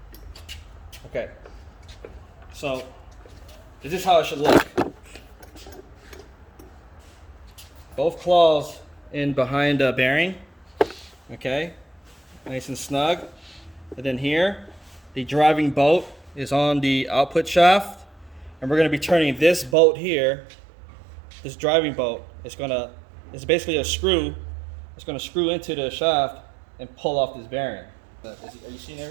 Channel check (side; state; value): left; drops out; at 19.8 s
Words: Okay. So this is how it should look. Both claws in behind the bearing. Okay. Nice and snug. And then here, the driving bolt is on the output shaft. And we're going to be turning this bolt here, this driving bolt, it's basically a screw. It's going to screw into the shaft and pull off this bearing. Are you seeing